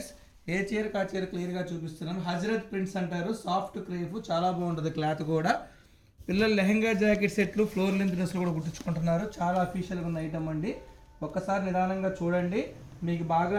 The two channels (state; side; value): identical; both; correlation 1.00